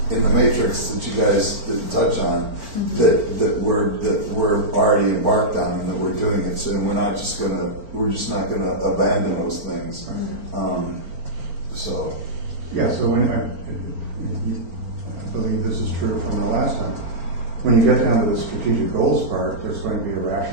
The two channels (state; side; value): late; left; 4.4 ms